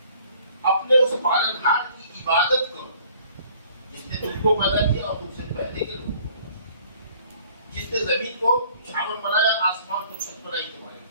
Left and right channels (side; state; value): both; inverted; correlation -0.57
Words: اپنے اس پالنہار کی عبادت کرو جس نے تم کو پیدا کیا اور تم سے پہلے کے لوگوں کو، جس نے زمین کو چھاؤں بنایا، آسمان کو چھت بنائی تمہارے،